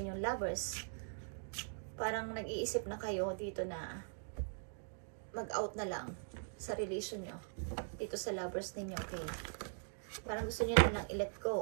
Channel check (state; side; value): silent; left; digital silence